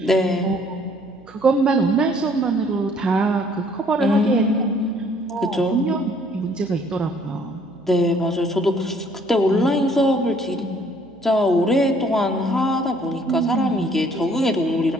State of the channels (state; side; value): noise; right; hum, 27 dB below the sound